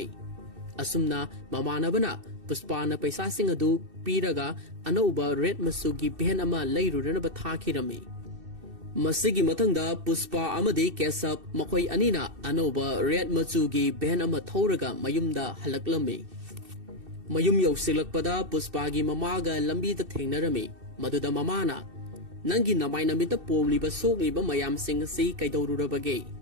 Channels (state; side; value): late; left; 2.6 ms